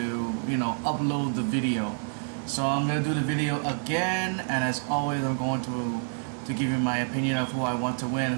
upload the video. So I'm going to do the video again, and as always I'm going to give you my opinion of who I want to win,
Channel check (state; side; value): silent; left; digital silence